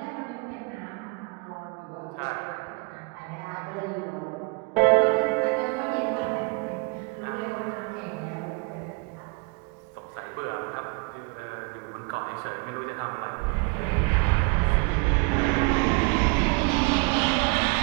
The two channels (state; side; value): quieter; left; 29.8 dB